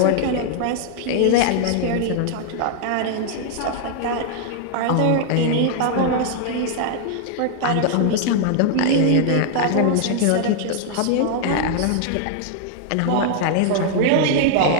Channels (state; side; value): different; both; correlation -0.01